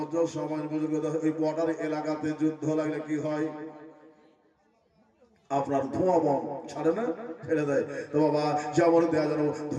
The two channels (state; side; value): identical; both; correlation 1.00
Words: সমাজ বুজুর্গ, এই বর্ডার এলাকাতে যুদ্ধ লাগলে কি হয়? আপনার ধোঁয়া বম ছাড়ে না, ছেড়ে দেয়। তো বাবা যেমন দেয়া যেন